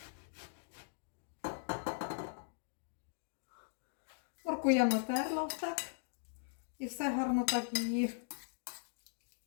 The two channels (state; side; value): silent; right; digital silence